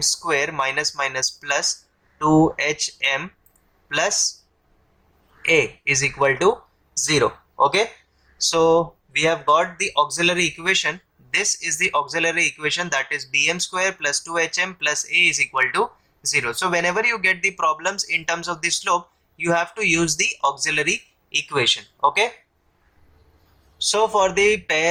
square minus minus plus 2hm plus a is equal to 0. Okay, so we have got the auxiliary equation. This is the auxiliary equation, that is bm square plus 2hm plus a is equal to 0. So whenever you get the problems in terms of the slope, you have to use the auxiliary equation. Okay, so for the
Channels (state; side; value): identical; both; correlation 1.00